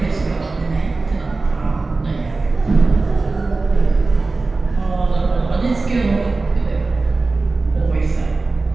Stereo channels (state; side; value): quieter; left; 3.6 dB